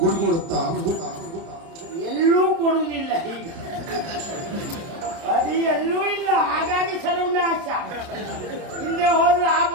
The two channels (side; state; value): left; late; 30 ms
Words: ಎಲ್ಲೂ ಕೊಡುವುದಿಲ್ಲ. ಈಗ ಅದು ಎಲ್ಲೂ ಇಲ್ಲ. ಹಾಗಾಗಿ ಸರ್ವನಾಶ. ಹಿಂದೆ ಹೋದ್ರೆ ಆ